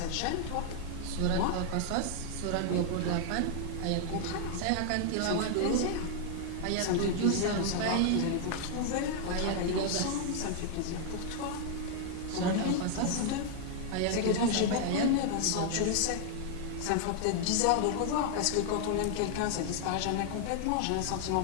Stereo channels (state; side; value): different; both; correlation 0.00